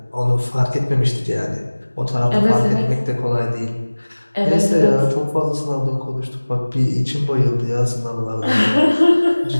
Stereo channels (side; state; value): both; inverted; correlation -1.00